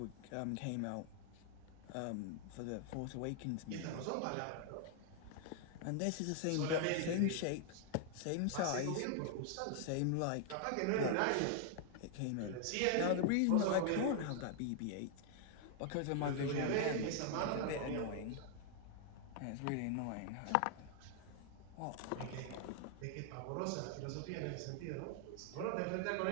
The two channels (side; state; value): both; different; correlation 0.00